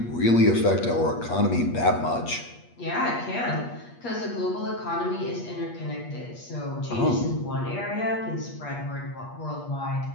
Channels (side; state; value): right; late; 8.4 ms